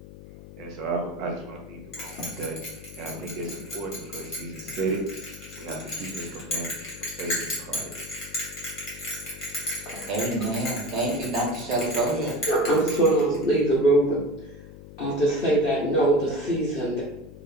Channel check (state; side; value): noise; left; hum, 16 dB below the sound